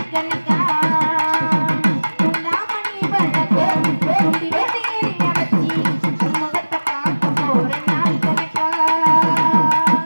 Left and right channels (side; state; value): both; inverted; correlation -1.00